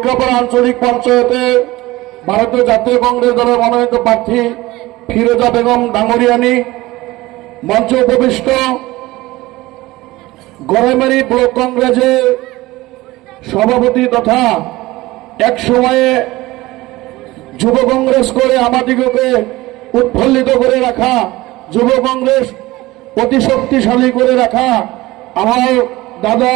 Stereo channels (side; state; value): left; quieter; 19.1 dB